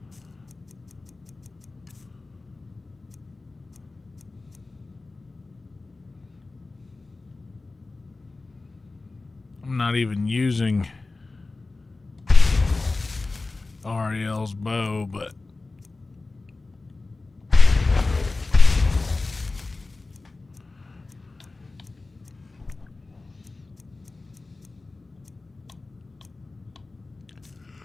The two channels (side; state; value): right; quieter; 3.4 dB